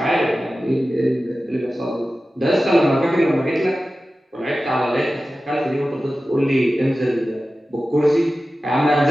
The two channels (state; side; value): normal; both; correlation 0.95